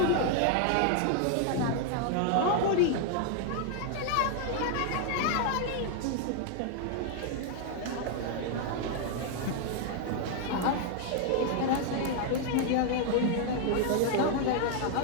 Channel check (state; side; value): different; both; correlation 0.00